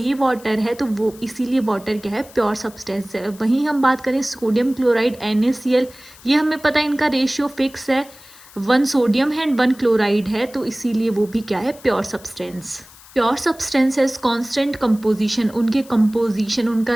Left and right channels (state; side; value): noise; left; hiss, 22 dB below the sound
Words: वाटर है, तो वो इसीलिए वाटर क्या है? प्योर सब्सटेंस है। वहीं हम बात करें सोडियम क्लोराइड NaCl, ये हमें पता है इनका रेशियो फिक्स है, 1 सोडियम है एंड 1 क्लोराइड है, तो इसीलिए वो भी क्या है? Pure substance. Pure substances constant composition, उनके कंपोजिशन, उनका